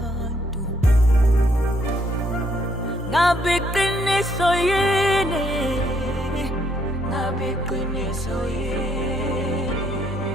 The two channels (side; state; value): both; normal; correlation 0.70